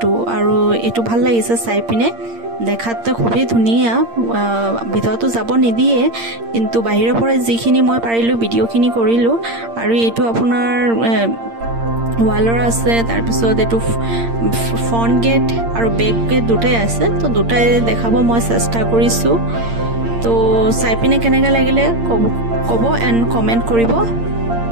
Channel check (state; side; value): late; left; 8.7 ms